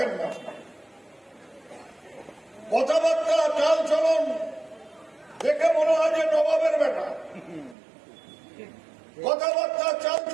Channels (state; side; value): drops out; left; at 7.8 s